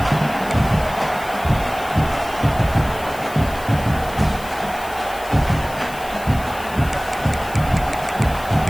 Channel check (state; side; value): noise; left; hiss, 17 dB below the sound